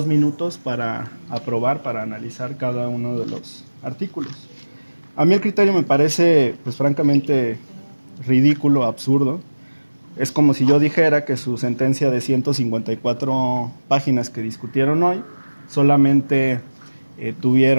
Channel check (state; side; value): inverted; both; correlation -1.00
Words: minutos para aprobar, para analizar cada uno de los artículos. A mí el criterio me parece, pues francamente, ridículo, absurdo. Es como si yo dijera que su sentencia de 154 páginas que discutieron hoy solamente